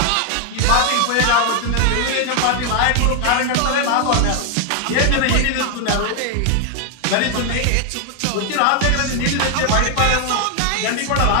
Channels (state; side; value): different; both; correlation 0.00